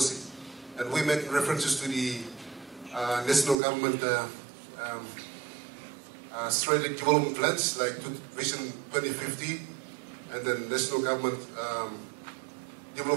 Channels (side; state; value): left; drops out; at 3.6 s